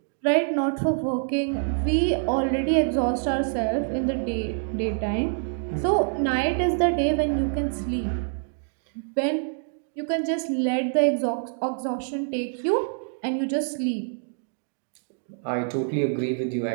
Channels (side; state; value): left; silent; digital silence